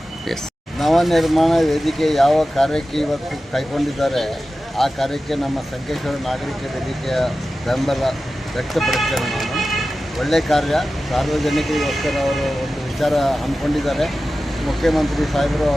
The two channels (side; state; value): both; normal; correlation 0.94